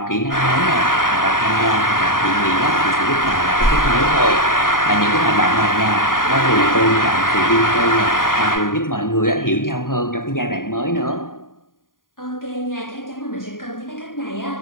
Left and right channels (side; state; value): right; late; 0.90 ms